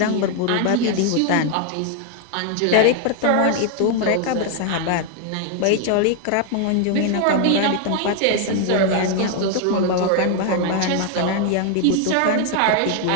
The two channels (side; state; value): both; different; correlation 0.00